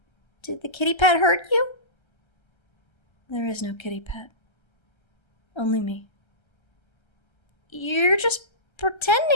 Did the kitty pet hurt you? There is no kitty pet. Only me. You're just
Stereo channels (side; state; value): right; late; 1.3 ms